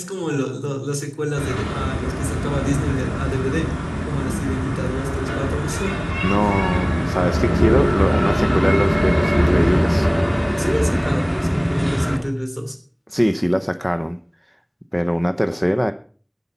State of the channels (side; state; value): both; identical; correlation 1.00